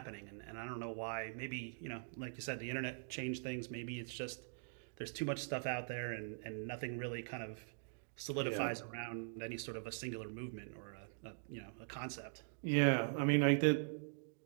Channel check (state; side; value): silent; left; digital silence